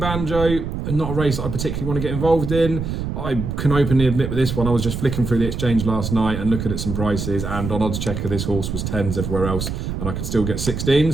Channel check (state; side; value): noise; right; rumble, 4 dB below the sound